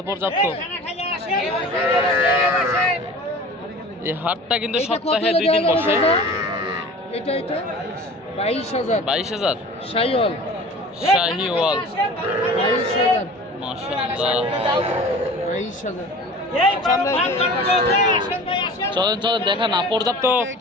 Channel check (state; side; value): normal; both; correlation 0.41